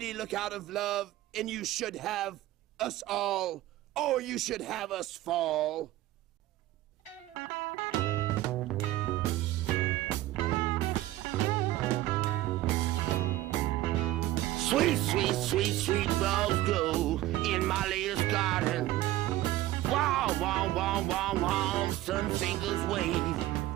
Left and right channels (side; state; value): left; quieter; 15.7 dB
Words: look out of love. And you should have us all, or you should have us fall. Sweet, sweet, sweet, sweet rose grow in my latest garden. Wow, wow, wow, wow, wow, sun fingers wave